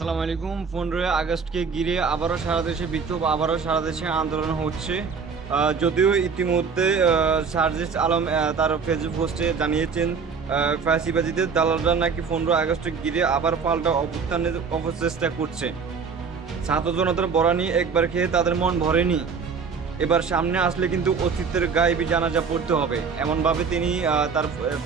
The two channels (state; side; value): quieter; left; 5.6 dB